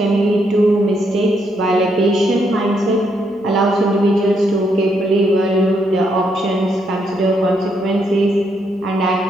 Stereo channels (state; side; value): normal; both; correlation 0.76